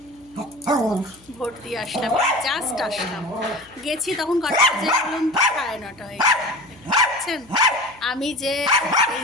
ভোট দিয়ে আসলাম, জাস্ট আসলাম, গেছি তখন কটা বাজে বলুন তো? 9:30 হয়ে গেছেন। আমি যে এই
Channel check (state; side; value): noise; left; hum, 28 dB below the sound